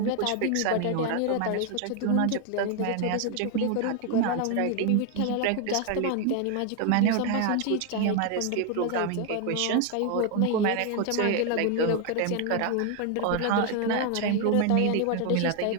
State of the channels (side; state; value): both; different; correlation 0.01